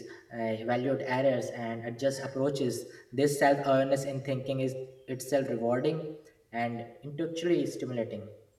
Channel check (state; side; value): identical; both; correlation 1.00